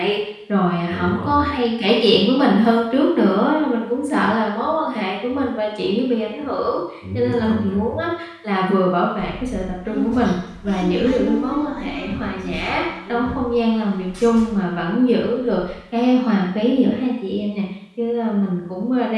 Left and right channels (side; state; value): both; identical; correlation 1.00